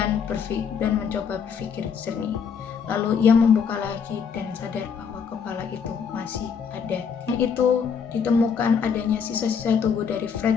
mencoba berpikir jernih. Lalu ia membuka lagi dan sadar bahwa kepala itu masih ada. Dan itu ditemukan adanya sisa-sisa tubuh dari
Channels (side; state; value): right; quieter; 6.6 dB